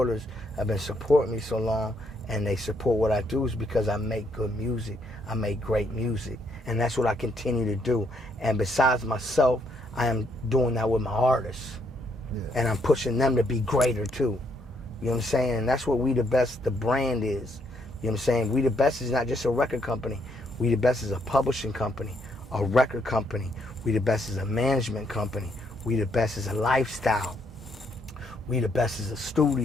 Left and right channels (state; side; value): normal; both; correlation 0.72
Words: have been supporting me so long, and they support what I do, is because I make good music. I make great music. And that's what I continue to do. And besides myself, I am doing that with my artists. Yeah. And I'm pushing them to be greater too. You know what I'm saying? And that's what We The Best, the brand is. You know what I'm saying? We The Best is not just a record company. We The Best is a publishing company, a record company. We The Best is a management company. We The Best is a lifestyle. We The Best is a